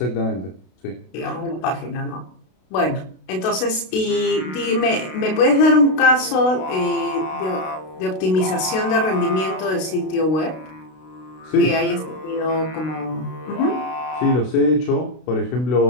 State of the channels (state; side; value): late; right; 32 ms